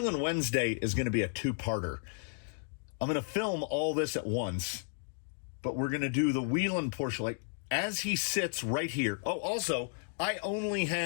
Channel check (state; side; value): silent; right; digital silence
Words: Wednesday is going to be a two-parter. I'm going to film all this at once, but we're going to do the Wheelin portion, like, as he sits right here. Oh, also, I only